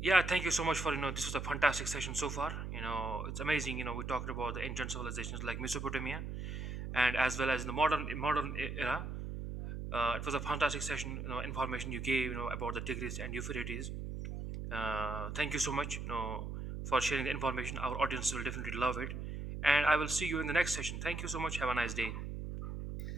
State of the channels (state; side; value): noise; right; hum, 5 dB below the sound